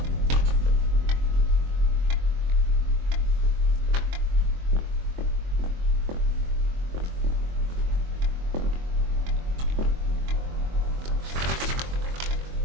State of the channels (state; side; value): late; left; 23 ms